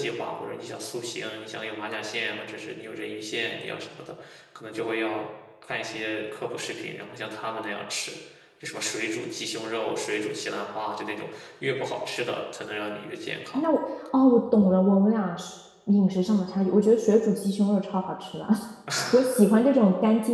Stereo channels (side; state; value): both; identical; correlation 1.00